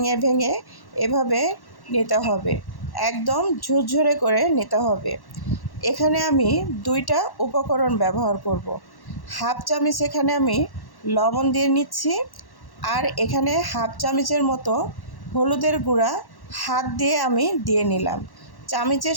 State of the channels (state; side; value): late; right; 1.1 ms